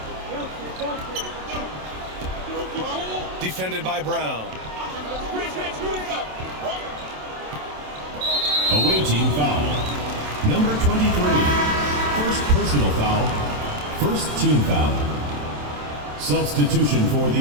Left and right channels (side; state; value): left; late; 27 ms